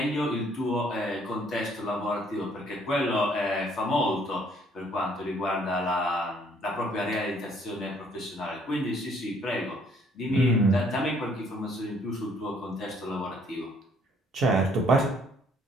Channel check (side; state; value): both; normal; correlation 0.63